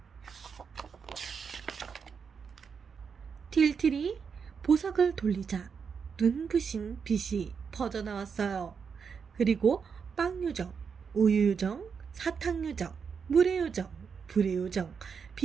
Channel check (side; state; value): left; quieter; 6.2 dB